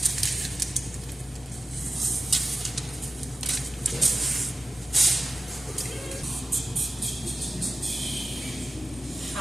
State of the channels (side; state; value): both; normal; correlation 0.95